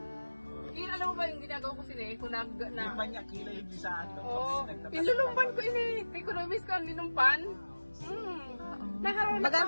Alam mo ba yung ginagawa ko sila eh? Kung Yung manya kila yung bisaan. Oo. Inilumpan ko ini. Economics ko ang linumpan. Naharap na Bagang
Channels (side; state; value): both; inverted; correlation -1.00